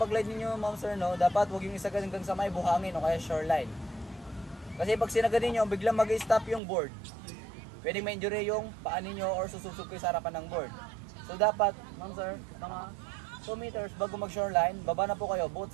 ninyo ma'am sir, no, dapat huwag yung isagad hanggang sa may buhangin o kaya shoreline. Kasi pag sinagad ninyo, biglang mag-stop yung board. Pwedeng ma-injury yung paa ninyo or sususog kayo sa harapan ng board. So dapat, ma'am sir, mga 2 meters bago mag-shoreline, baba na po kayo both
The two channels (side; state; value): left; drops out; at 6.6 s